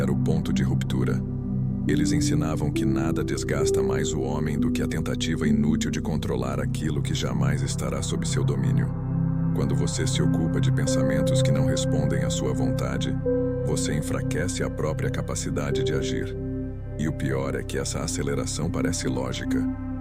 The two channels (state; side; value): identical; both; correlation 1.00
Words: o ponto de ruptura. Eles ensinavam que nada desgasta mais o homem do que a tentativa inútil de controlar aquilo que jamais estará sob seu domínio. Quando você se ocupa de pensamentos que não respondem à sua vontade, você enfraquece a própria capacidade de agir. E o pior é que essa aceleração parece lógica.